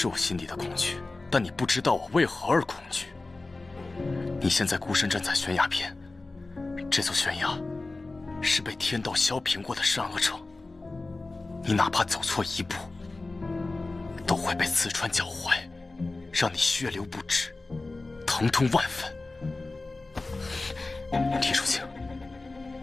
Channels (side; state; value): right; quieter; 3.3 dB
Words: 我心底的恐惧，但你不知道我为何而恐惧。你现在孤身站在悬崖边，这座悬崖是被天道削平过的善恶城，你哪怕走错一步，都会被刺穿脚踝，让你血流不止，疼痛万分。李淑清，